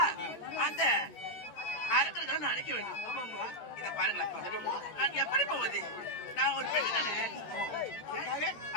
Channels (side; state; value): right; late; 13 ms